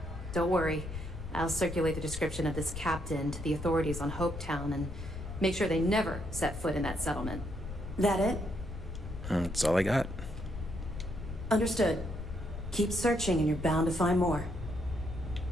Don't worry. I'll circulate the description of this captain to the authorities on Hopetown and make sure they never set foot in that settlement. That it? That's all I got. Understood. Keep searching and you're bound to find more.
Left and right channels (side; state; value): left; noise; rumble, 9 dB below the sound